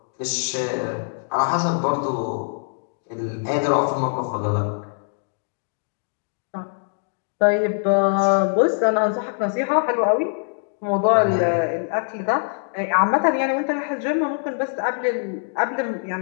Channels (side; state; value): right; silent; digital silence